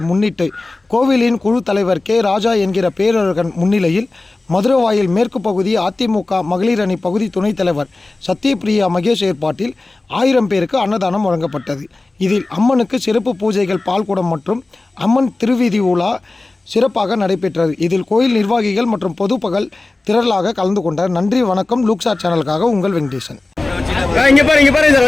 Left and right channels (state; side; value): quieter; right; 3.2 dB